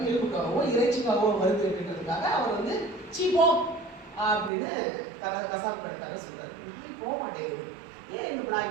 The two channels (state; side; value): drops out; left; at 4.5 s